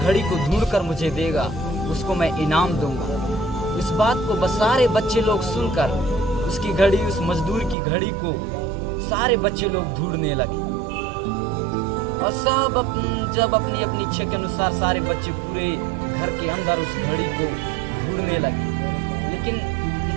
को ढूंढकर मुझे देगा उसको मैं इनाम दूंगा। इस बात को बस सारे बच्चे लोग सुनकर उसकी घड़ी, उस मजदूर की घड़ी को सारे बच्चे लोग ढूंढने लगे और सब जब अपनी अपनी इच्छा के अनुसार सारे बच्चे पूरे घर के अंदर उस घड़ी को ढूंढने लगे। लेकिन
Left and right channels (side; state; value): left; drops out; at 7.8 s